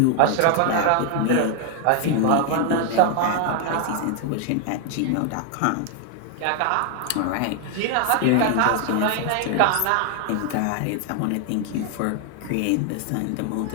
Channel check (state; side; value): different; both; correlation 0.00